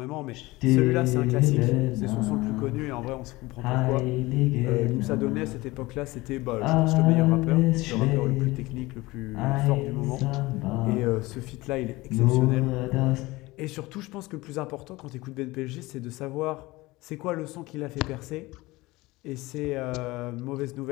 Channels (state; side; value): quieter; right; 20.7 dB